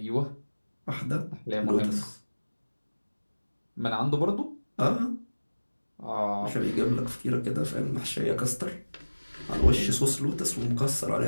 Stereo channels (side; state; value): both; inverted; correlation -1.00